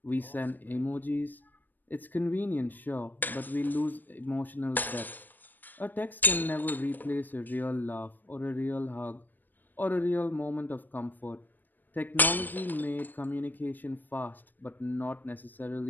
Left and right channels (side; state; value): right; late; 0.089 ms